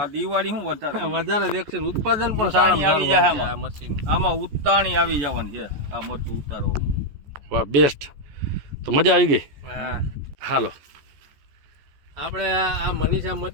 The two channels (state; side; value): late; left; 14 ms